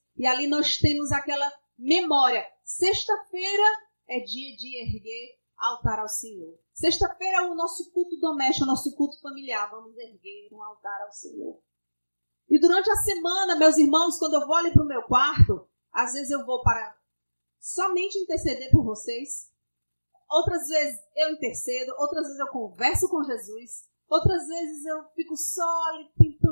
e ali nós temos aquela memória. Sexta-feira é dia de erguer altar ao Senhor. Sexta-feira é o nosso culto doméstico, o nosso culto familiar. Vamos erguer um altar ao Senhor. E durante a semana, meus irmãos, quando eu vou ali para o meu quarto, às vezes eu vou para somente interceder por vocês. Outras vezes eu intercedo, outras vezes eu converso com Jesus, outras vezes eu fico só ali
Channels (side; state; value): both; inverted; correlation -1.00